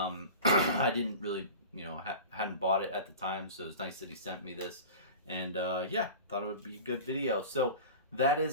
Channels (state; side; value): inverted; both; correlation -0.35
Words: didn't really hadn't bought it at the time, so it's nice that he sent me this. And yeah, thought it would be a good video. So that